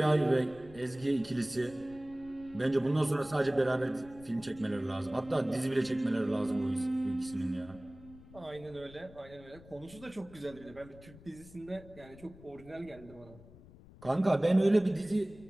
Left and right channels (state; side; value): noise; left; rumble, 21 dB below the sound